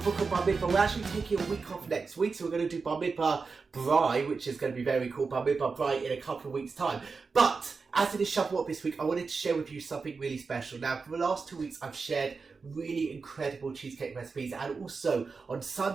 book of Bar Mitzvah, we're actually taking a week off next week. So we're going to do Bar Mitzvah Brai, which is going to be very cool. Bar Mitzvah Brai in a couple of weeks' time. But as it is Shavuot this week, I wanted to share with you something really special. Now, for the last 2 weeks, I've shared really incredible cheesecake recipes, and also on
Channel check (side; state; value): left; quieter; 4.7 dB